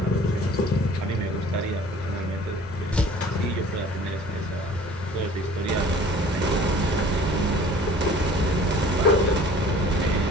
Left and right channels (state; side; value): normal; both; correlation 0.48